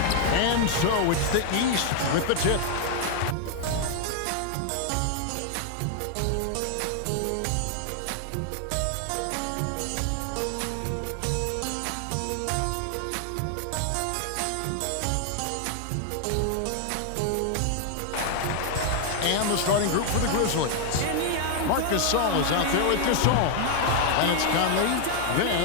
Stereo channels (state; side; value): different; both; correlation 0.00